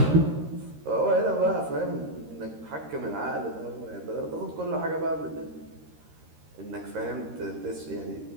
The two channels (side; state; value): left; late; 13 ms